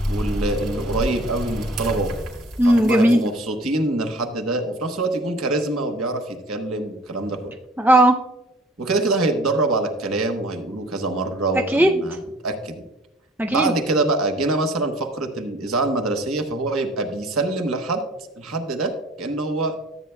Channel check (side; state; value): both; normal; correlation 0.52